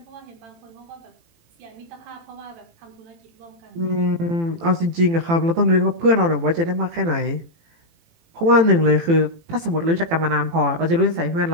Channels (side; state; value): left; late; 18 ms